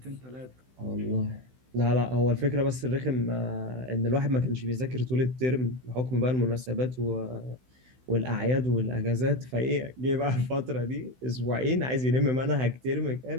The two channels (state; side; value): late; left; 16 ms